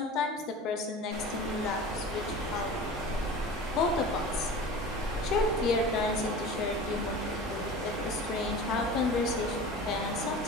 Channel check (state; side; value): normal; both; correlation 0.36